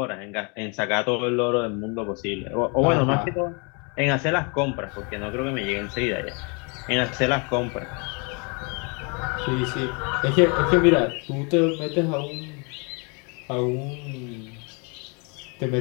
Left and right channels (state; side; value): quieter; right; 33.2 dB